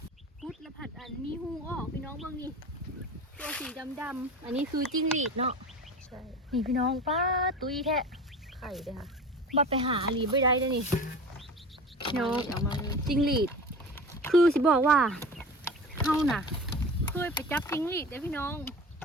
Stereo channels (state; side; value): normal; both; correlation 0.34